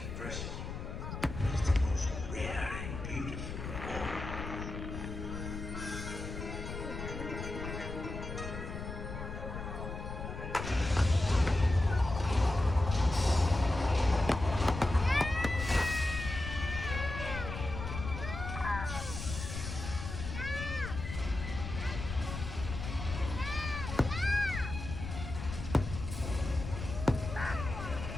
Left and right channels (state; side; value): noise; left; rumble, 7 dB below the sound